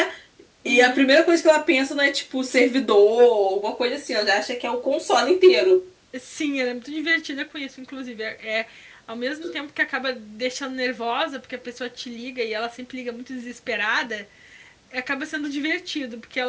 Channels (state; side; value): identical; both; correlation 1.00